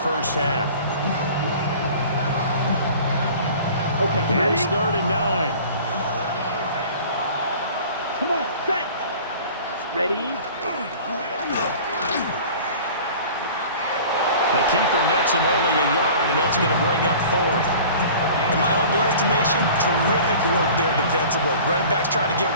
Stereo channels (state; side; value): inverted; both; correlation -0.44